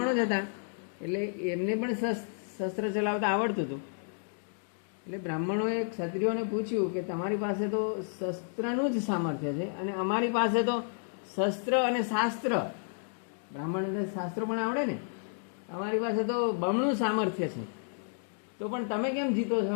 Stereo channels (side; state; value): right; silent; digital silence